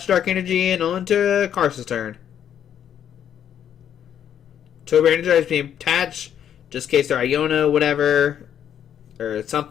Dark Energy and on to Carson's turn. Turbo Energize being attached, just in case they're Iono, whatever, or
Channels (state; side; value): quieter; right; 9.5 dB